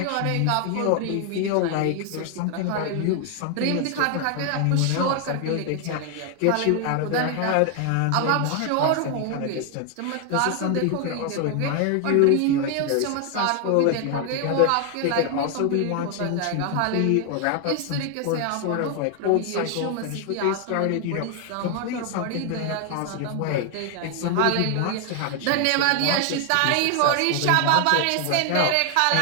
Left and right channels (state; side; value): different; both; correlation 0.00